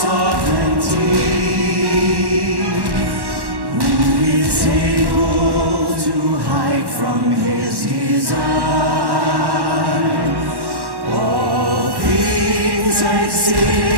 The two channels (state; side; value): late; left; 1.1 ms